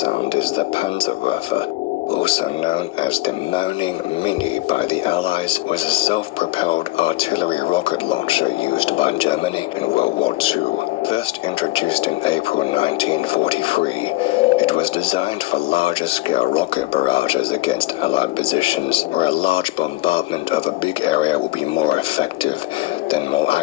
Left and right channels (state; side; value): quieter; right; 19.6 dB